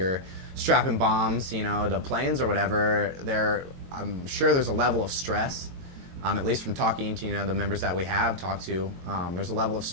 strapping bombs to planes or whatever. I'm sure there's a level of stress. At least from talking to the members that we have talked to, there's a level of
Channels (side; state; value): left; late; 22 ms